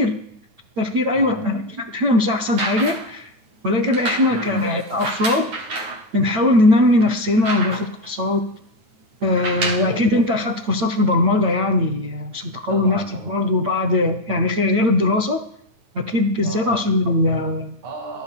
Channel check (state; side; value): late; left; 9.3 ms